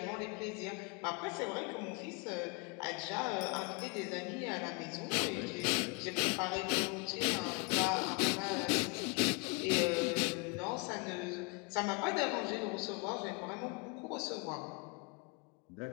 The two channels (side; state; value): right; quieter; 30.7 dB